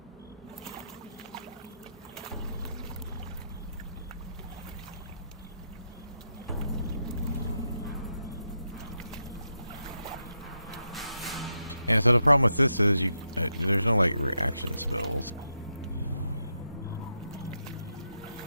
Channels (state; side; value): inverted; both; correlation -0.84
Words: Yeah, so the problem with this is there's no like reaction spells.